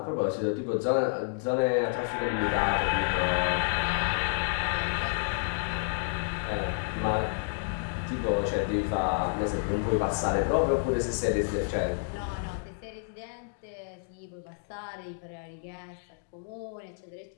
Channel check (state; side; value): silent; right; digital silence